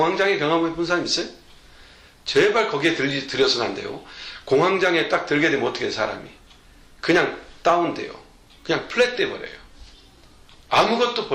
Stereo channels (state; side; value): identical; both; correlation 1.00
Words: 경험해 본 사람 있어요? 제발 거기에 들여서는 안 돼요. 공황장애에 딱 들게 되면 어떻게 해요, 사람이? 그냥 다운돼요. 그냥 플랫 돼버려요. 아무것도